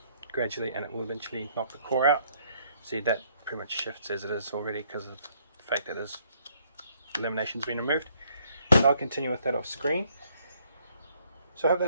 gradually and it will eventually knock the core out. See, that pretty much shifts as it is already because of the fact that this lamination's been removed. So I'll continue with that off screen. So I hope that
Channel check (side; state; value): both; inverted; correlation -0.67